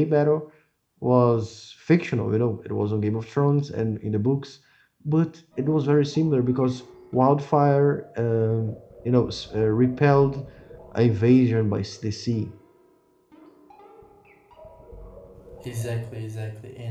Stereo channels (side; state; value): both; identical; correlation 1.00